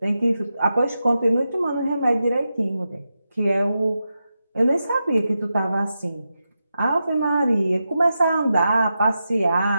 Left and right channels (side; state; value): both; inverted; correlation -0.89